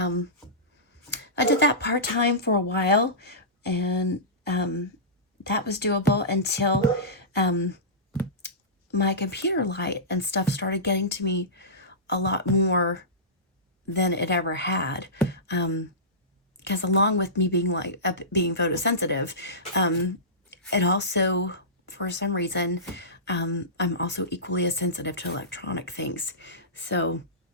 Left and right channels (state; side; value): normal; both; correlation -0.20